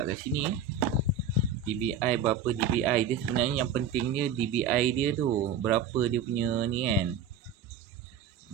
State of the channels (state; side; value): quieter; left; 6.4 dB